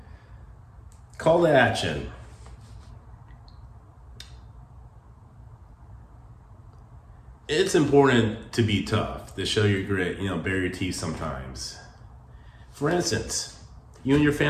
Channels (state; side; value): identical; both; correlation 1.00